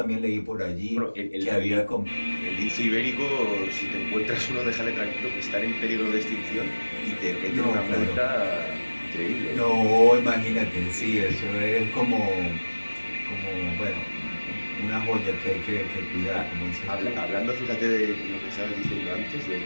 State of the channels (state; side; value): inverted; both; correlation -1.00